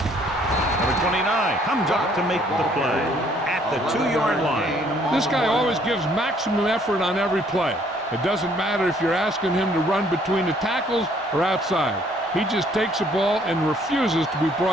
Number 29 comes up to make the play at the 2-yard line. This guy always gives maximum effort on every play. It doesn't matter if you're asking him to run between the tackles or outside. He just takes the ball and refuses to be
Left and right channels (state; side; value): normal; both; correlation 0.63